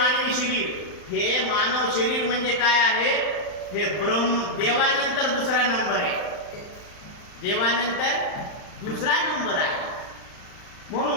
शरीर, हे मानव शरीर म्हणजे काय आहे? हे देवानंतर दुसरा नंबर आहे. देवानंतर दुसरा नंबर आहे.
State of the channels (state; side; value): late; right; 39 ms